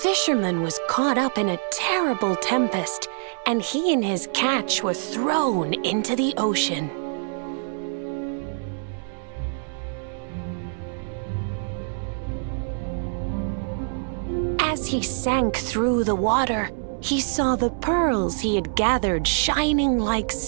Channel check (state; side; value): silent; left; 62 dB below the other